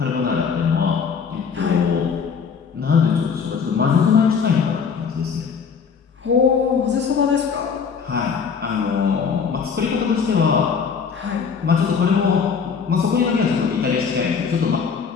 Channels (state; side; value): quieter; right; 6.2 dB